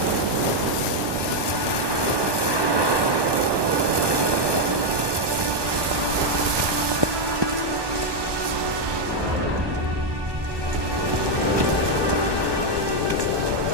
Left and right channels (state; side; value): late; left; 1.2 ms